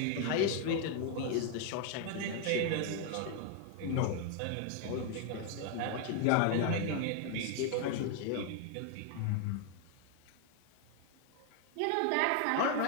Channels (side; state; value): both; different; correlation 0.00